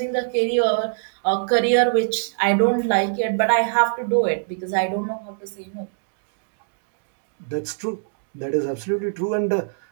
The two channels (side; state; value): left; silent; digital silence